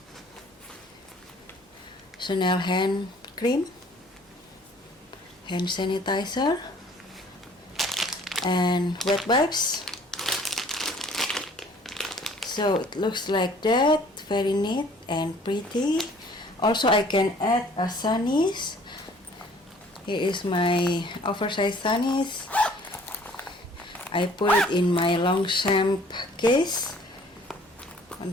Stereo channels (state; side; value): normal; both; correlation 0.55